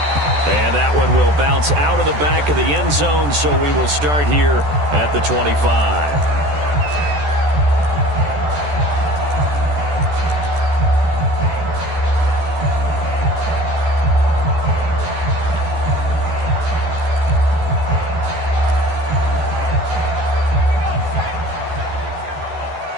And that one will bounce out of the back of the end zone, so we will start here at the 25.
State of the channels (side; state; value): left; late; 14 ms